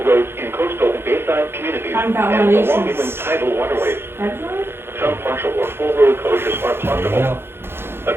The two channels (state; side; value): late; left; 0.11 ms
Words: roads in coastal and bayside communities and along inland tidal waterways. Some partial or full road closures are possible. A